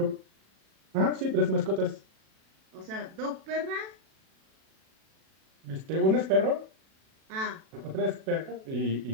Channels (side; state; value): left; late; 37 ms